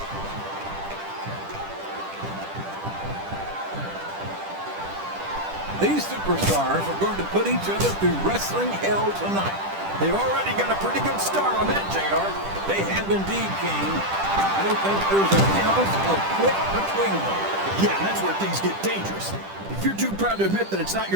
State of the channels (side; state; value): left; late; 10 ms